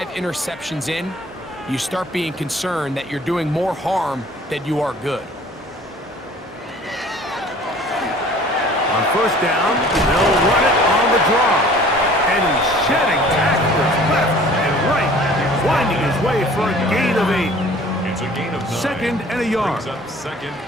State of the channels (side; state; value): both; normal; correlation 0.50